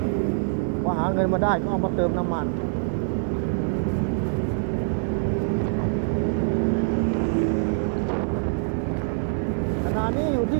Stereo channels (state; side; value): silent; left; 62 dB below the other